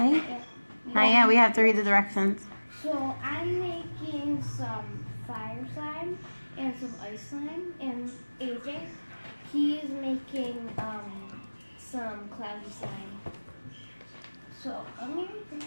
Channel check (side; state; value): both; inverted; correlation -1.00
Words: Not yet. We have to read the directions. So I'm making some fire slime and some ice slime, and AJ, he is making some cloudy slime. So I'm gonna